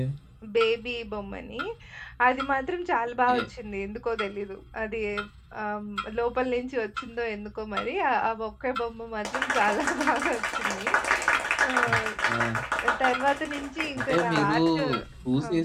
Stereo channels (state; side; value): identical; both; correlation 1.00